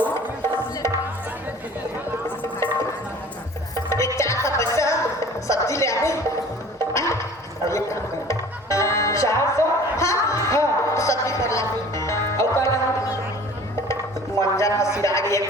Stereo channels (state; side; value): normal; both; correlation 0.46